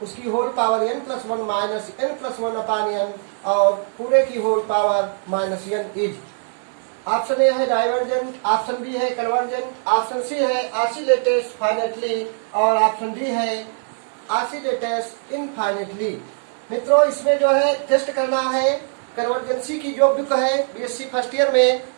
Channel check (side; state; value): left; silent; 65 dB below the other